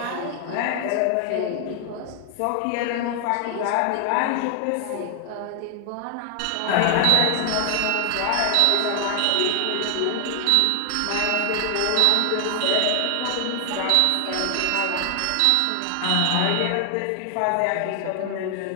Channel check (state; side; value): different; both; correlation 0.00